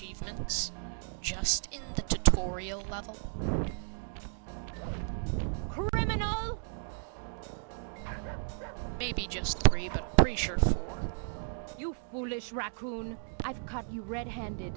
just in the tutorial level. Criminal! Maybe just 3, but I'm pretty sure 4. You foolish raccoon. I've caught you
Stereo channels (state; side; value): silent; left; 55 dB below the other